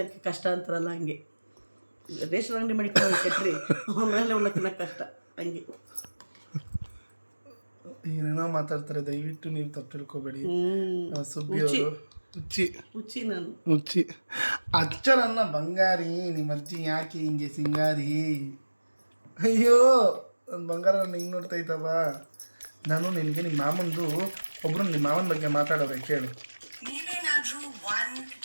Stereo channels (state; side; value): inverted; both; correlation -1.00